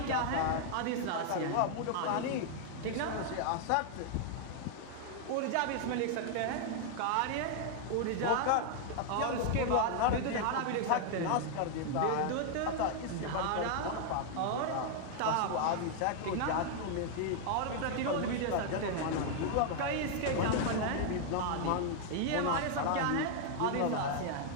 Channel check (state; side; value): different; both; correlation 0.00